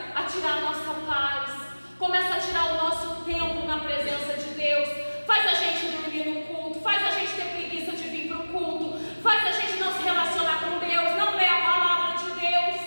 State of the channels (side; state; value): both; inverted; correlation -1.00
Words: a tirar a nossa paz, começa a tirar o nosso tempo na presença de Deus, faz a gente dormir no culto, faz a gente ter preguiça de vir para o culto, faz a gente não se relacionar com Deus, não ler a palavra de Deus.